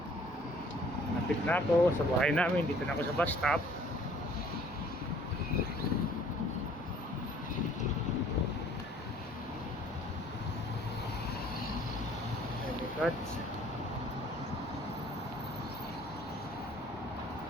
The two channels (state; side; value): normal; both; correlation 0.56